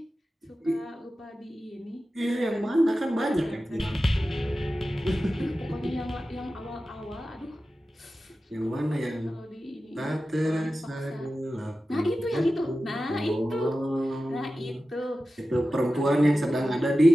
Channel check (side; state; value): both; normal; correlation 0.94